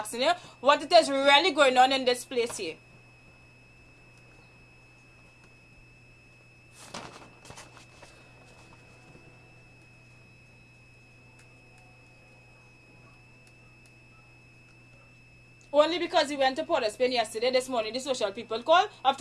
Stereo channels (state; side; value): identical; both; correlation 1.00